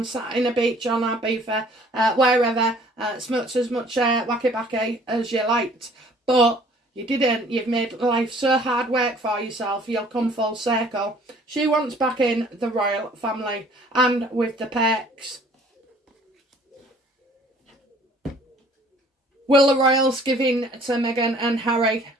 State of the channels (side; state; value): both; normal; correlation 0.55